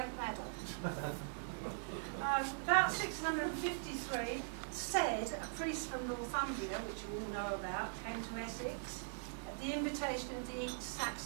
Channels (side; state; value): left; silent; 50 dB below the other